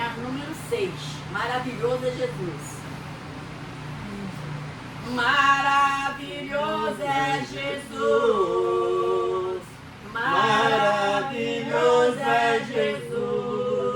número 6. Maravilhoso é Jesus. Maravilhoso é Jesus. Maravilhoso é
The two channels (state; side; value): identical; both; correlation 1.00